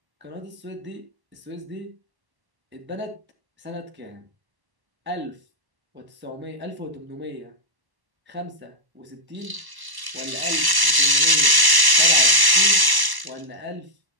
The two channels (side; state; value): left; late; 1.0 ms